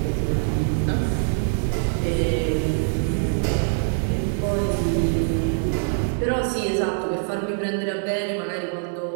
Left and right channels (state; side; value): silent; left; 58 dB below the other